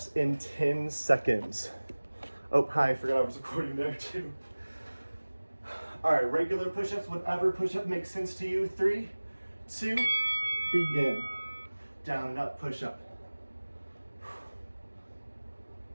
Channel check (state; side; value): inverted; both; correlation -1.00